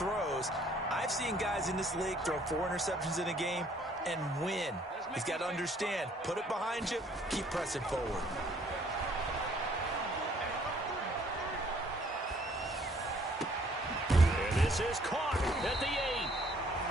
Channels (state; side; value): normal; both; correlation 0.61